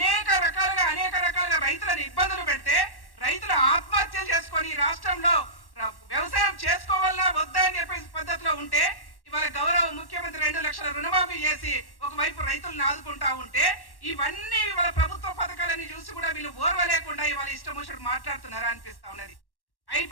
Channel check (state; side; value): late; right; 1.1 ms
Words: రకాలుగా రైతులను ఇబ్బందులు పెడితే రైతులు ఆత్మహత్యలు చేసుకొని రాష్ట్రంలో వ్యవసాయం చేసుకోవాలా వద్దా అని చెప్పే పద్ధతిలో ఉంటే ఇవాళ గౌరవ ముఖ్యమంత్రి 2 లక్షల రుణమాఫీ చేసి ఒకవైపు రైతులను ఆదుకుంటా ఉంటే ఇవన్నీ ఇవాళ ప్రభుత్వ పథకాలని చూసి కూడా వీళ్ళు ఓర్వలేకుండా ఇవాళ ఇష్టం వచ్చినట్టు మాట్లాడుతున్నారా అనిపిస్తా ఉన్నది.